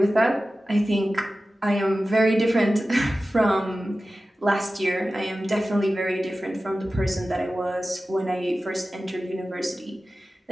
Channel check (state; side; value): normal; both; correlation 0.95